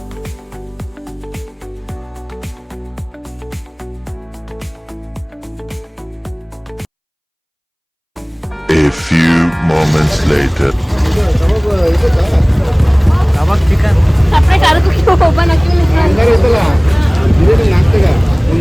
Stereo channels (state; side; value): identical; both; correlation 1.00